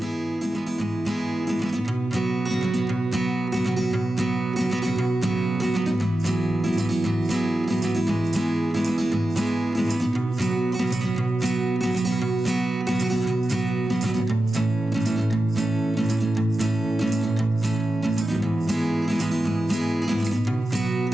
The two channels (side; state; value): both; normal; correlation 0.92